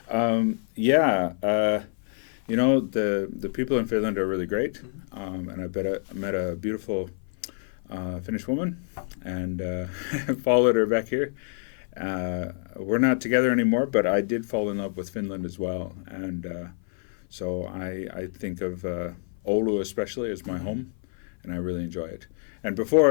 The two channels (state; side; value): silent; right; 56 dB below the other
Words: The people in Finland are really great, and I met a beautiful Finnish woman and followed her back here. We're not together anymore, but I did fall in love with Finland as well, and so I think of Oulu especially as my home, and I really enjoy it. And